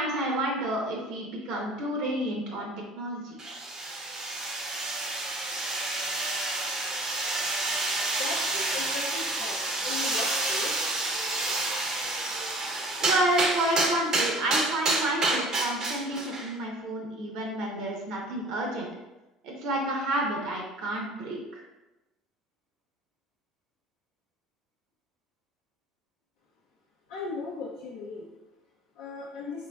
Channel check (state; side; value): normal; both; correlation 0.45